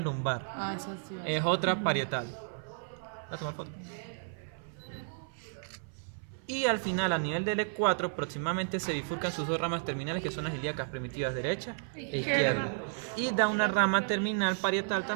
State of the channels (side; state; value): left; silent; 55 dB below the other